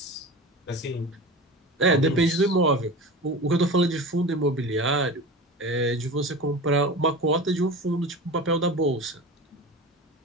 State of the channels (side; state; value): both; normal; correlation 0.31